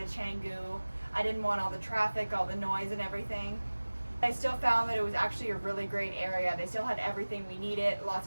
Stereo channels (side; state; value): both; inverted; correlation -1.00